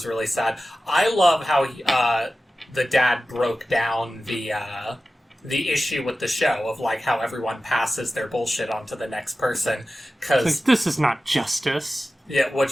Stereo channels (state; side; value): normal; both; correlation 0.94